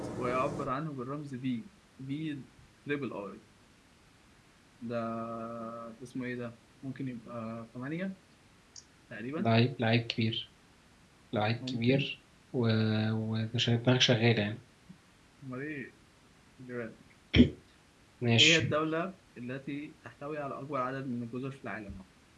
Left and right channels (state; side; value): identical; both; correlation 1.00